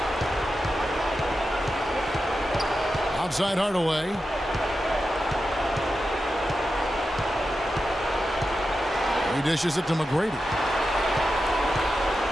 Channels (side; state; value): both; normal; correlation 0.90